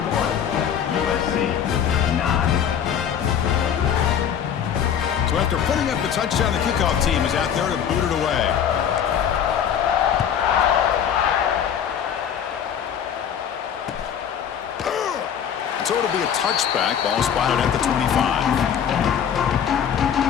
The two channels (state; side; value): quieter; right; 8.6 dB